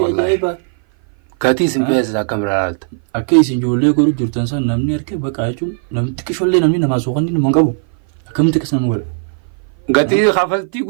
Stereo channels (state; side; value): silent; left; 56 dB below the other